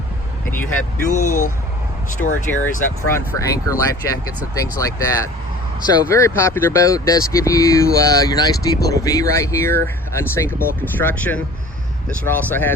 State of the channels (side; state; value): both; normal; correlation 0.45